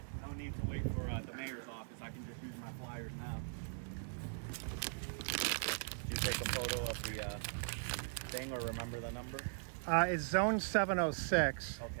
no need to wait for the mayor's office. I can just use my flyers now. Did you take a photo of the thing or remember the number? It's zone 706.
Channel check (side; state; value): left; silent; 51 dB below the other